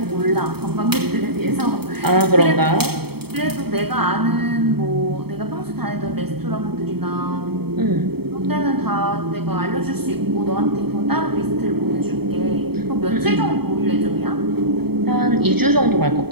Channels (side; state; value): left; late; 0.96 ms